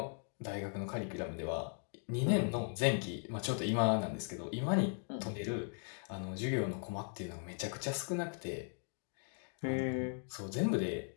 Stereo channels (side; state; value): right; silent; 52 dB below the other